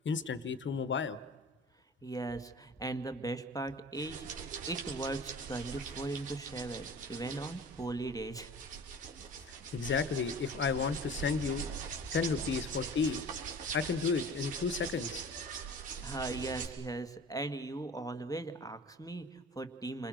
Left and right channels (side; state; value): both; normal; correlation 0.41